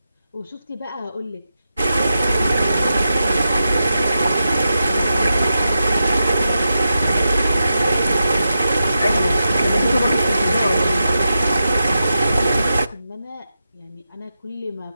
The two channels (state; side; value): inverted; both; correlation -0.89